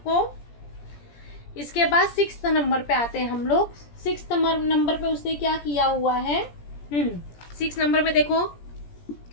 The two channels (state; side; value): late; right; 17 ms